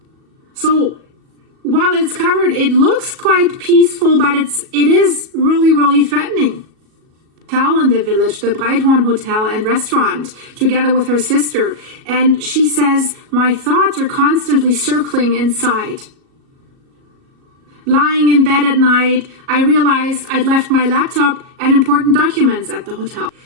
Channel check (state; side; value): late; left; 37 ms